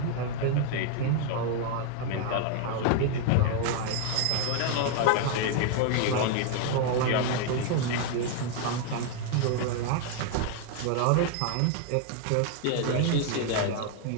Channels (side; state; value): both; different; correlation 0.00